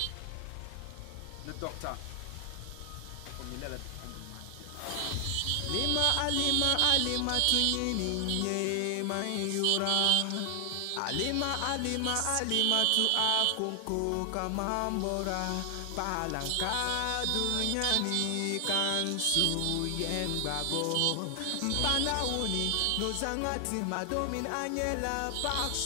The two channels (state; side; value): different; both; correlation 0.00